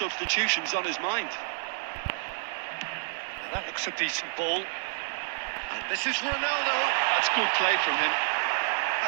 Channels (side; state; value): left; silent; digital silence